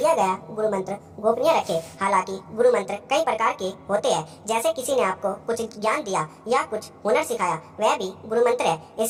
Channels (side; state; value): both; identical; correlation 1.00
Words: गया गुरु मंत्र गोपनीय रखें। हालांकि गुरु मंत्र कई प्रकार के होते हैं, जैसे किसी ने आपको कुछ ज्ञान दिया या कुछ हुनर सिखाया, वह भी गुरु मंत्र है।